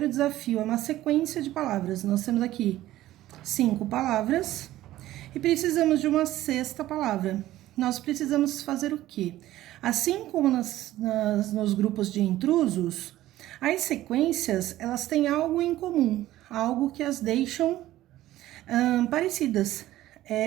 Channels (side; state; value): left; quieter; 14.9 dB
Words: desafio é uma sequência de palavras. Nós temos aqui 5 palavras e precisamos de uma sexta palavra. Nós precisamos fazer o quê? Assim como nos grupos de intrusos, as sequências, elas têm algo em comum, algo que as deixam parecidas,